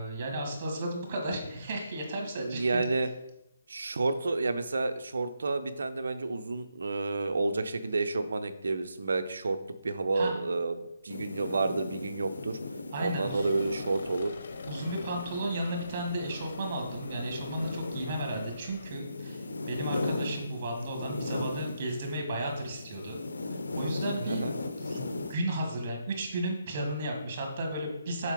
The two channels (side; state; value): both; inverted; correlation -0.81